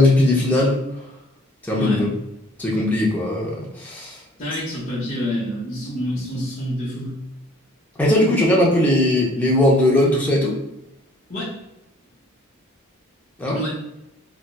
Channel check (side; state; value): both; normal; correlation 0.57